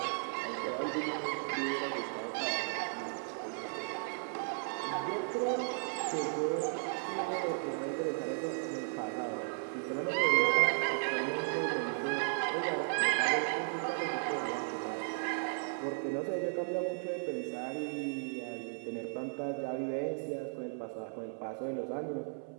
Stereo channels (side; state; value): left; silent; 54 dB below the other